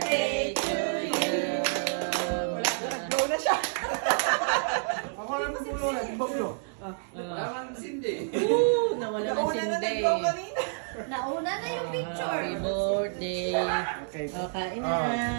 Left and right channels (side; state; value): left; silent; digital silence